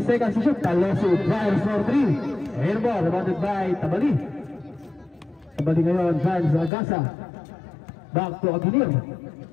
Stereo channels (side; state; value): right; drops out; at 6.7 s